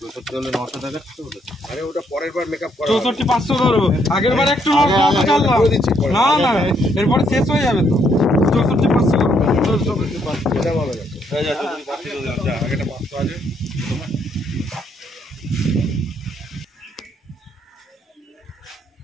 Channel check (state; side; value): normal; both; correlation 0.72